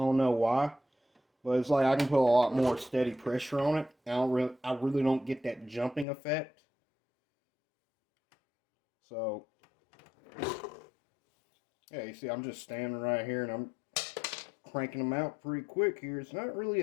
know why, but it's like I can put a lot more steady pressure on it. I really don't get that jumping effect. So, yeah, you see, I'm just standing right here, and I'm cranking them out pretty quick here. It's not really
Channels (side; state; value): right; drops out; at 6.1 s